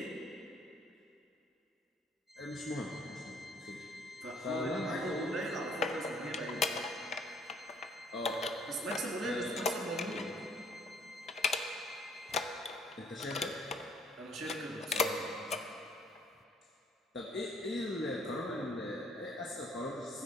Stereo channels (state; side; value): normal; both; correlation 0.62